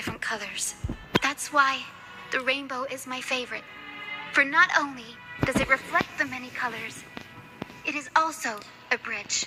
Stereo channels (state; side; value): identical; both; correlation 1.00